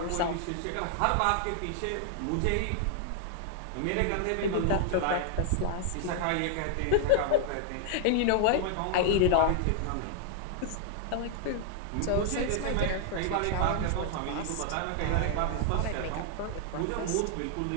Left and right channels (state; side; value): different; both; correlation 0.00